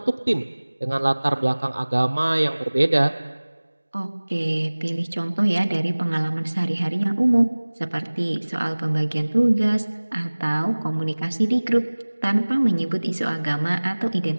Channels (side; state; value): both; inverted; correlation -1.00